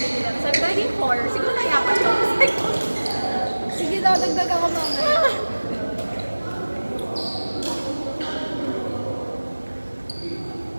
Sabi ko, naging 4. Siguro nayapan ko. Sige daw, dagdag ako mamaya.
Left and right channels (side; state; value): both; inverted; correlation -1.00